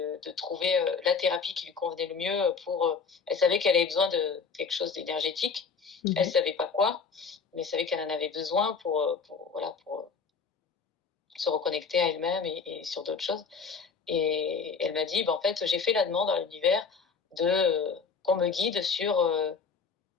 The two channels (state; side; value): quieter; right; 5.4 dB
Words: trouver la thérapie qui lui convenait le mieux elle savait qu'elle avait besoin de quelque chose d'énergétique. Elle Mmh. savait pas quoi, mais elle savait qu'elle en avait besoin voilà, pour se reconnecter à elle-même et sur d'autres choses. Et elle m'a dit, bah, en fait, j'ai fait la demande à l'univers qu'on me guide sur,